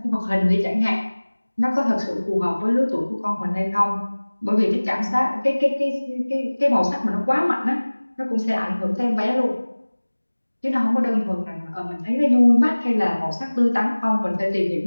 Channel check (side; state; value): both; inverted; correlation -1.00